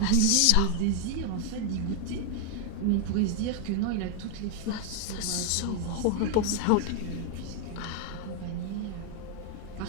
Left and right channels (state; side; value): different; both; correlation 0.00